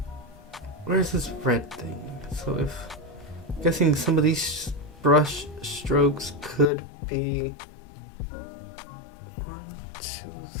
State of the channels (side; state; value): right; drops out; at 6.7 s